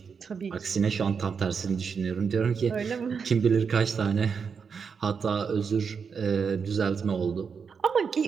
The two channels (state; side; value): quieter; left; 6.0 dB